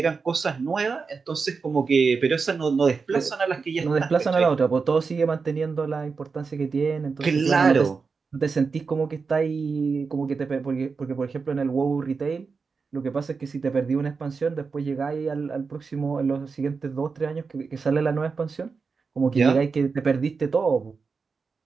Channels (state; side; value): quieter; left; 4.9 dB